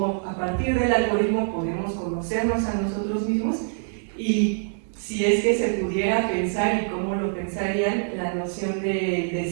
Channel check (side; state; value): left; silent; 62 dB below the other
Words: a partir del algoritmo podemos conocernos a nosotros mismos, y si es que se pudiera pensar y cómo lo pensarían la noción de